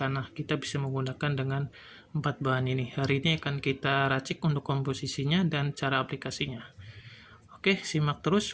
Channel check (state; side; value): identical; both; correlation 1.00